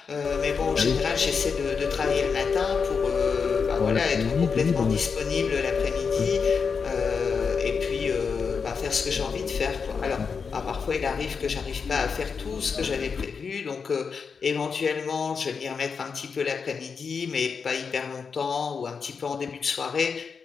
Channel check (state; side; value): quieter; right; 5.7 dB